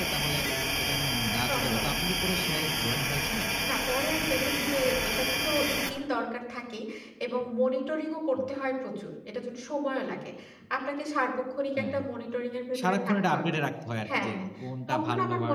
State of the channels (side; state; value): both; identical; correlation 1.00